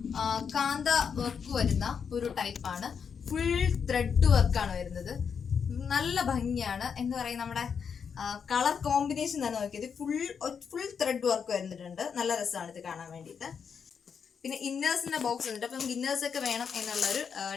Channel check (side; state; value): right; quieter; 6.7 dB